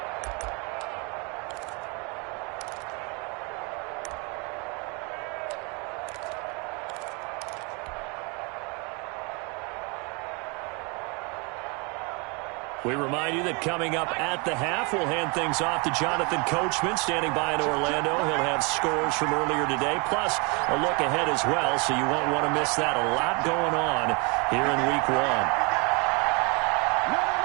We remind you that coming up at the half, we'll hand things off to Jonathan Coachman, standing by in Orlando. He'll have scores from earlier today, plus a look ahead as well, so you won't want to miss that. A lot going on here in Week 1.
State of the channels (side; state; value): left; quieter; 31.0 dB